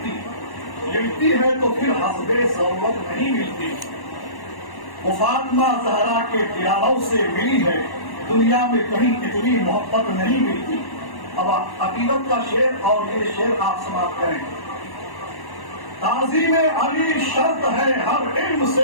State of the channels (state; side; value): late; right; 1.1 ms